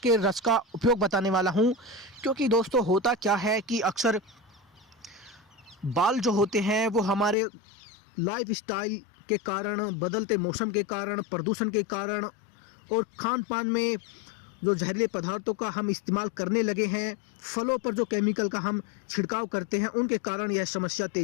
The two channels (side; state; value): right; drops out; at 7.4 s